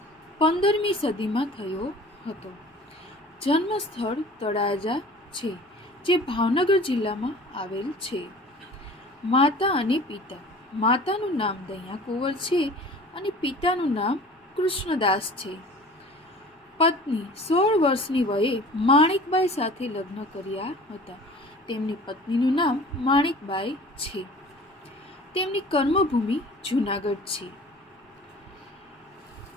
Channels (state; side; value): normal; both; correlation 0.44